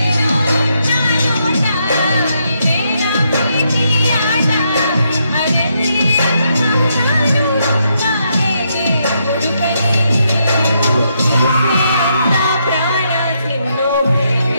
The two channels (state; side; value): inverted; both; correlation -0.78